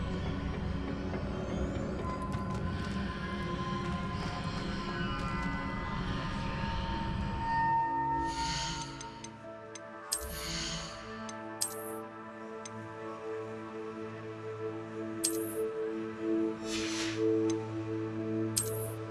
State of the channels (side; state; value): both; identical; correlation 1.00